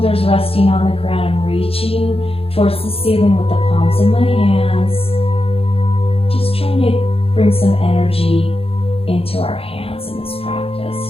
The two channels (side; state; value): right; late; 0.28 ms